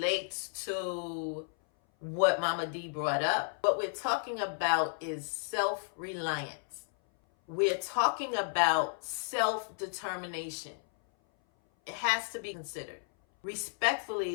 to what Momma Dee brought up, what we're talking about is self-reliance. We're talking about self-determination. It has to be considered.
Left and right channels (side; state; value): right; silent; 56 dB below the other